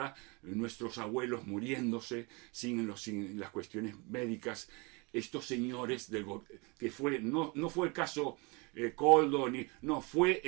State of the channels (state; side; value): quieter; left; 29.2 dB